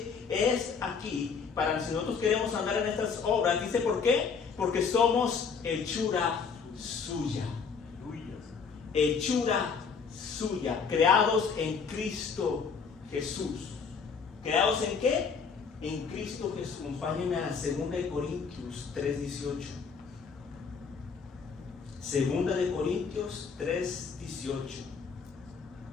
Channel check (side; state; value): right; quieter; 5.7 dB